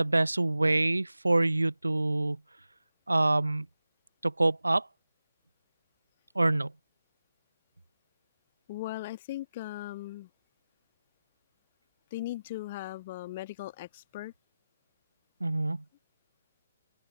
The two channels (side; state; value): both; inverted; correlation -0.96